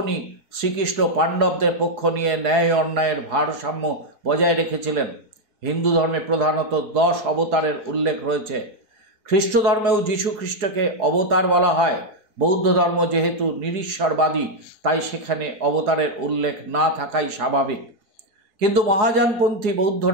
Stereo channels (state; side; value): late; left; 4.7 ms